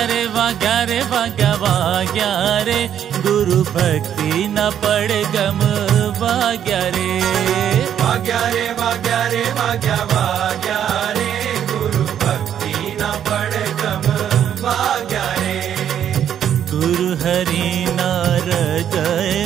रे वाग्या रे वाग्या वाग्या रे गुरु भक्ति न पड़ गम वाग्या रे वाग्या रे वाग्या रे वाग्या वाग्या रे गुरु भक्ति न पड़ गम वाग्या रे गुरु हरि ना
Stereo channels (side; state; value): left; quieter; 9.6 dB